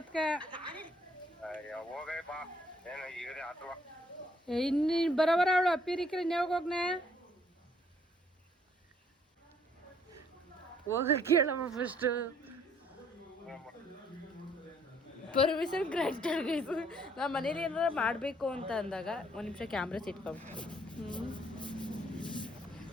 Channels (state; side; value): normal; both; correlation 0.64